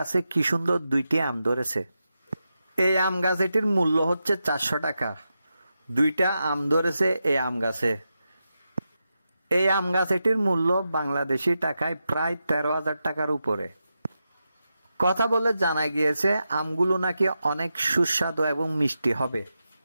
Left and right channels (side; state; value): both; inverted; correlation -0.88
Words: কি সুন্দর 2টি আম ধরেছে। এই আম গাছটির মূল্য হচ্ছে 400 টাকা। 2টা আম ধরেছে এই আম গাছে। এই আম গাছটির মূল্য বাংলাদেশি টাকায় প্রায় 13,000 টাকার উপরে। কথা বলে জানা গিয়েছে আমগুলো নাকি অনেক সুস্বাদু এবং মিষ্টি হবে।